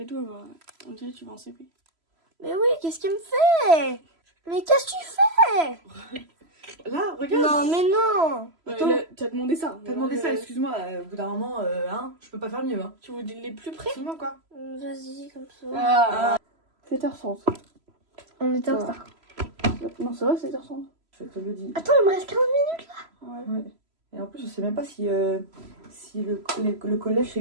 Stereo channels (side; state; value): left; late; 3.0 ms